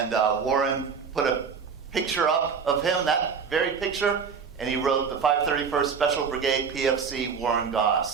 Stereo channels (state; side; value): quieter; left; 6.0 dB